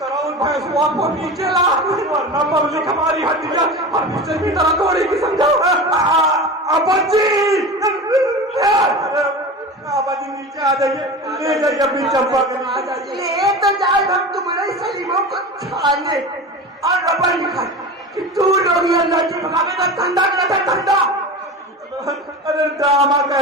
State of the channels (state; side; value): normal; both; correlation 0.30